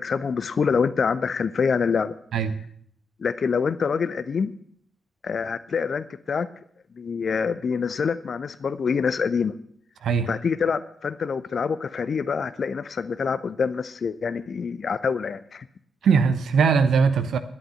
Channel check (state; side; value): normal; both; correlation 0.79